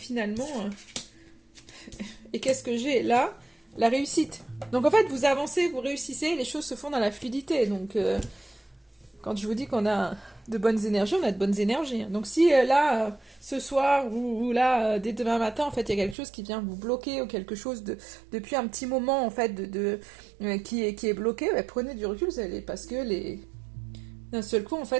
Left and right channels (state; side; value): drops out; left; at 16.2 s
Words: Et qu'est-ce que j'ai là? La réussite. Donc en fait, vous avancez, vous réussissez, les choses se font dans la fluidité. Donc quand je vous dis qu'on a de bonnes énergies, on a de bonnes énergies. Donc si là, ce soir, ou là, dès demain matin, en fait, il y a quelque chose qui vient vous bloquer, ou quelque chose depuis un petit moment, en fait, qui est bloqué, bah, prenez du recul, parce que d'un seul coup, en